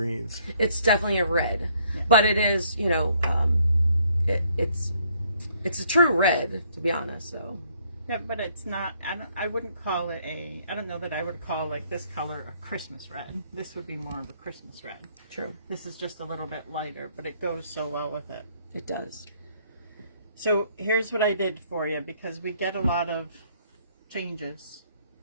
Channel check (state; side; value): inverted; both; correlation -0.66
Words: It's definitely a red, but it is, you know, it's a true red, to be honest. So Yeah, but it's not. I wouldn't call it a. I don't know that I would call like this color a Christmas red. This would be more of a Christmas red. true, This is just a little bit lighter, but it goes so well with it. it does. So here's what I did for you, because we get a lot of changes.